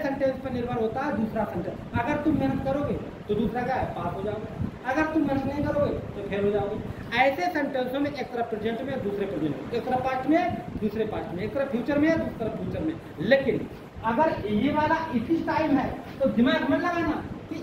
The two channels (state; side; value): identical; both; correlation 1.00